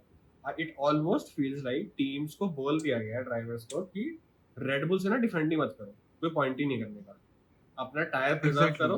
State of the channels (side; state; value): both; identical; correlation 1.00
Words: it almost feels like teams को बोल दिया गया ड्राइवर्स को कि रेड बुल से ना डिफेंड ही मत करो, कोई पॉइंट ही नहीं करने का, अपना टायर प्रिजर्व करो,